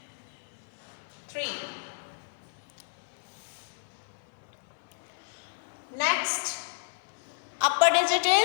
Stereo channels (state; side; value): silent; right; digital silence